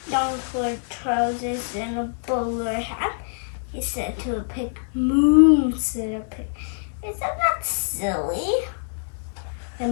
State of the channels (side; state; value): right; silent; digital silence